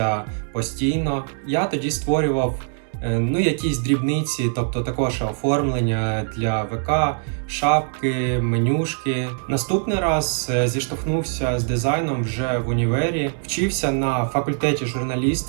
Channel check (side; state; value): left; silent; 64 dB below the other